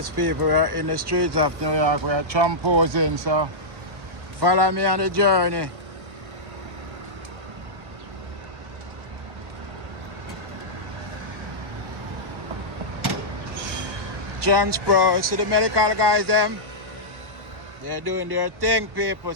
people, we are in the streets of New York. We are tramposing, so follow me on the journey. Transpro, see the medical guys, them? They're doing their thing, people,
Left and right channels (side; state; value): left; late; 1.1 ms